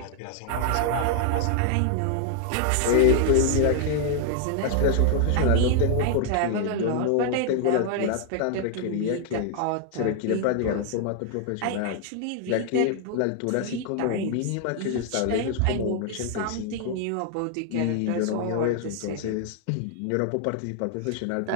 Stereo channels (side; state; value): both; different; correlation 0.00